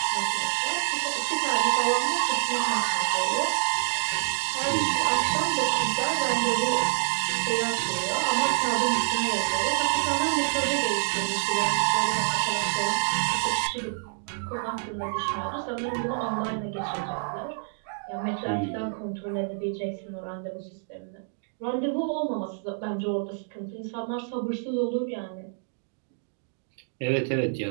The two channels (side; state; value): left; silent; digital silence